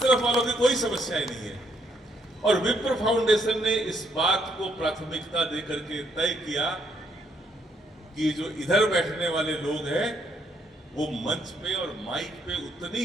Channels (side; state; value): both; normal; correlation 0.72